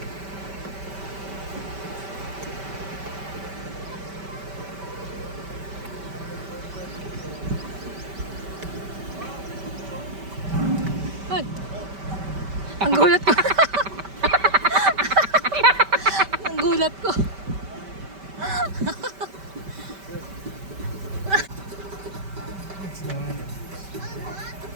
Ay! Ang gulat ko. Ang gulat ko.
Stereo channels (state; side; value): late; left; 5.1 ms